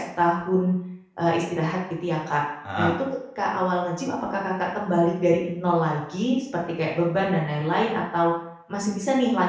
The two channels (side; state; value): both; identical; correlation 1.00